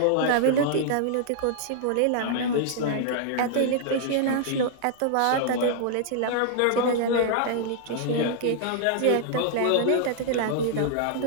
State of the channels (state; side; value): different; both; correlation -0.01